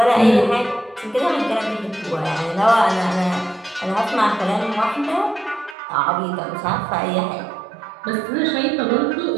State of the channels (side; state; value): left; drops out; at 5.8 s